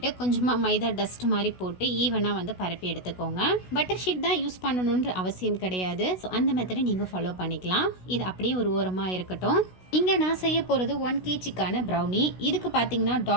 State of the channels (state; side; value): late; right; 16 ms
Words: கொஞ்சமாக மைதா டஸ்ட் மாதிரி போட்டு ஈவனாக வந்து பரப்பி எடுத்துக்கோங்க. பட்டர் ஷீட் தான் யூஸ் பண்ணணுன்ற அவசியம் கிடையாது. ஸோ அந்த மெத்தடை நீங்கள் ஃபாலோ பண்ணிக்கலாம். இது அப்படியே ஒரு ஓரமாக இருக்கட்டும். இங்கே நான் செய்ய போகிறது 1 kgக்கான ப்ரௌனி. இதுக்கு பார்த்தீங்கன்னா